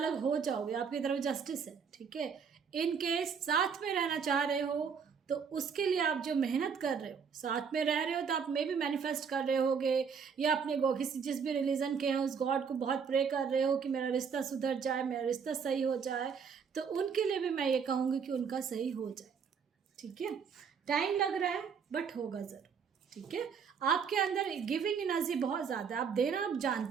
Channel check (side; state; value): left; quieter; 6.4 dB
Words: हो जाओगे, आपकी तरफ जस्टिस है। ठीक है, इन केस साथ में रहना चाह रहे हो तो उसके लिए आप जो मेहनत कर रहे हो, साथ में रह रहे हो, तो आप में भी मैनिफेस्ट कर रहे होगे, या अपने किसी जिस भी रिलीजन के हैं उस गॉड को बहुत प्रे कर रहे हो कि मेरा रिश्ता सुधर जाए, मेरा रिश्ता सही हो जाए। तो उनके लिए भी मैं ये कहूँगी कि उनका सही हो जाए। ठीक है, टाइम लग रहा है बट होगा ज़रूर। ठीक है, आपके अंदर गिविंग एनर्जी बहुत ज़्यादा है, आप देना आप